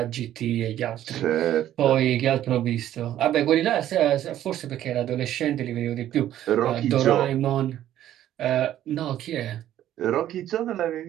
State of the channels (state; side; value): quieter; left; 12.2 dB